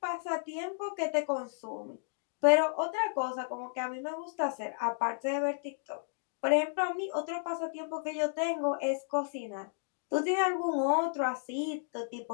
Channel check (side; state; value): right; silent; digital silence